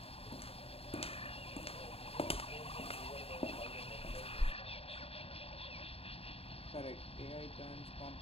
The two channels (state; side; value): late; right; 0.28 ms